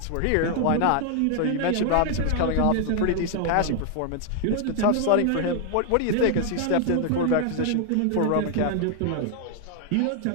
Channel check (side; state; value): both; different; correlation 0.00